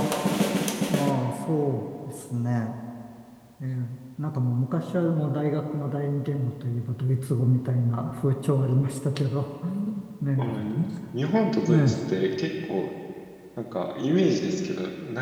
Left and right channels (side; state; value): both; identical; correlation 1.00